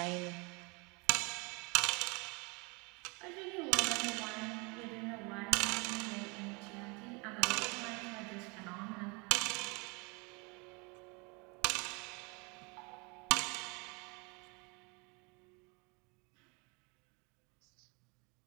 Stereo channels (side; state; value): left; quieter; 29.5 dB